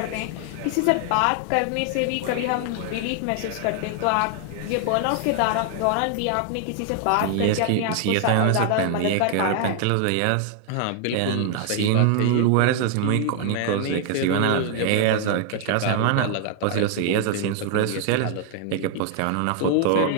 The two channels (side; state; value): both; different; correlation 0.00